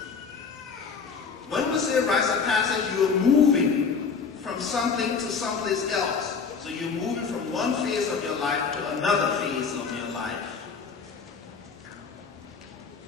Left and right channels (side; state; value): right; quieter; 5.5 dB